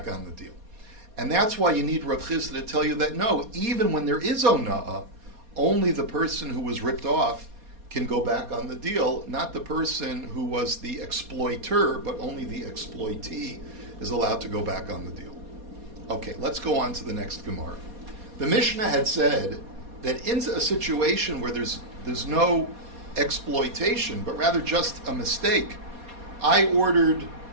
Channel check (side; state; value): left; late; 4.2 ms